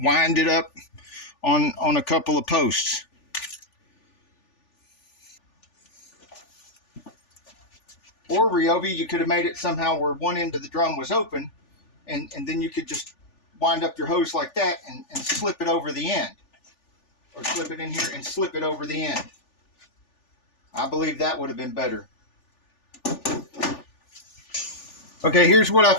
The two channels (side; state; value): right; late; 3.4 ms